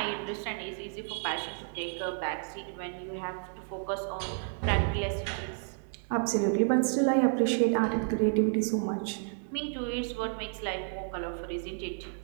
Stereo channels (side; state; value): left; silent; 57 dB below the other